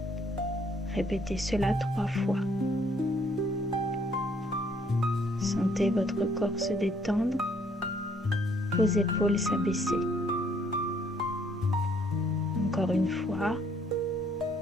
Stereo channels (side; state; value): both; normal; correlation 0.65